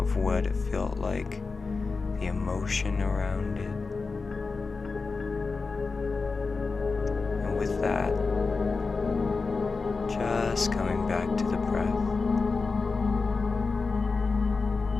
what it felt like, the emotion around it. And with that, just coming back to the breath,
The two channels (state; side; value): quieter; right; 4.3 dB